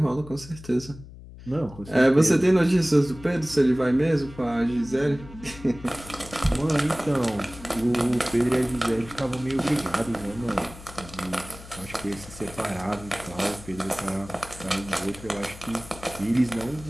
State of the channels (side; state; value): left; noise; hum, 17 dB below the sound